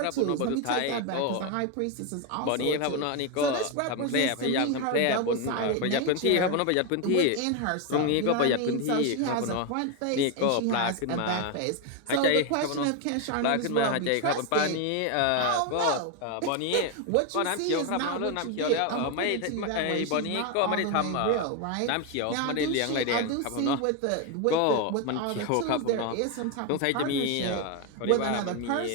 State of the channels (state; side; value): different; both; correlation 0.02